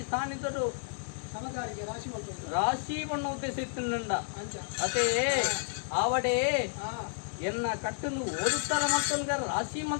ಸಾನಿದಡು ರಾಶಿ ಬಣ್ಣ ಉದ್ದೇಶಿಸಿಂದ ಅದೇ ಆವಡೆ ಎನ್ನ ಕಟ್ಟನ್ನು ಓದುತ್ತಾರ ಮತ್ತೊಂದ ರಾಶಿ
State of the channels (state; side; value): silent; right; 57 dB below the other